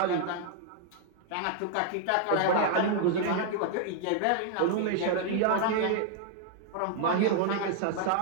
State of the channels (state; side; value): different; both; correlation -0.01